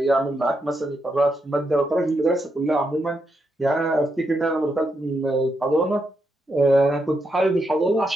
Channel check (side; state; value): both; normal; correlation 0.82